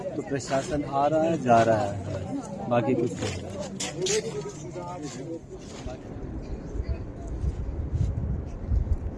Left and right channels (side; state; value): both; identical; correlation 1.00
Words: तो प्रशासन आ रहा है, जा रहा है, बाकी कुछ नहीं।